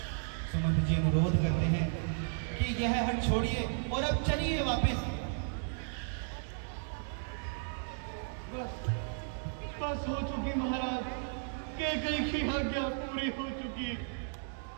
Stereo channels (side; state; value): left; silent; digital silence